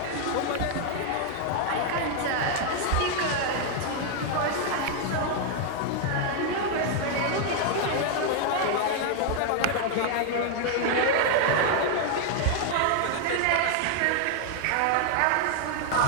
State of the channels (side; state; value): both; different; correlation 0.00